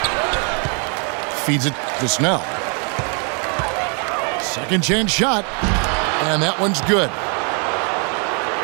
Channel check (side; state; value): left; quieter; 38.3 dB